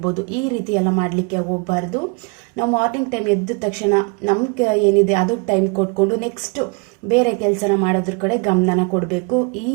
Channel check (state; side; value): quieter; left; 32.4 dB